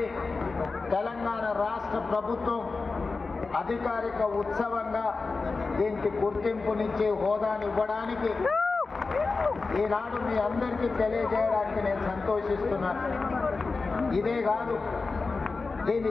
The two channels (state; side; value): quieter; right; 4.1 dB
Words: తెలంగాణ రాష్ట్ర ప్రభుత్వం అధికారిక ఉత్సవంగా దీనికి గుర్తింపునిచ్చి హోదాని ఇవ్వడానికి ఈనాడు మీ అందరికీ తెలియజేయడానికి నేను సంతోషిస్తున్నాను. ఇదే కాదు, దీన్ని